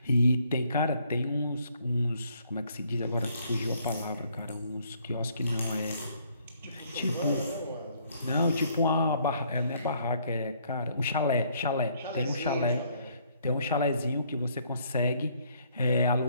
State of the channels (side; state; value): both; inverted; correlation -0.66